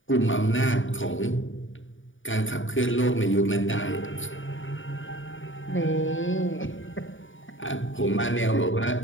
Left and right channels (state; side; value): late; right; 0.57 ms